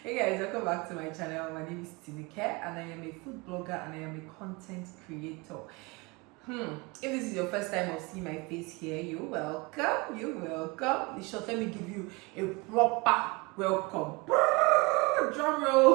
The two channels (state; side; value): quieter; left; 26.0 dB